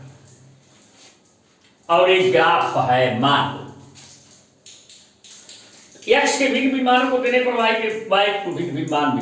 और एक ग्राफ है। मान लो x के भिन्न भिन्न मानों को देने पर y को भिन्न भिन्न मान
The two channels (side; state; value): both; identical; correlation 1.00